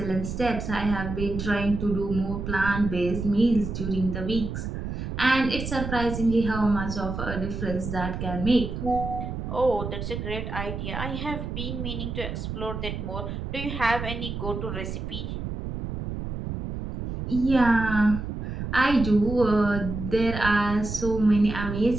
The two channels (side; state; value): right; noise; rumble, 5 dB below the sound